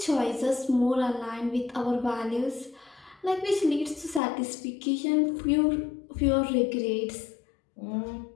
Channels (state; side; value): drops out; right; at 4.2 s